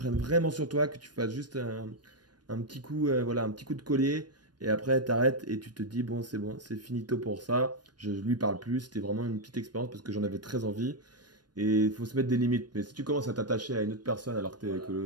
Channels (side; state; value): left; late; 0.70 ms